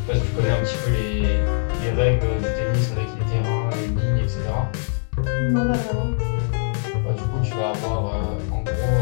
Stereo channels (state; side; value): silent; right; digital silence